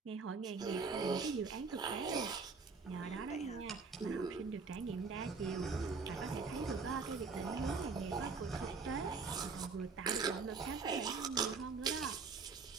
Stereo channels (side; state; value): left; quieter; 4.6 dB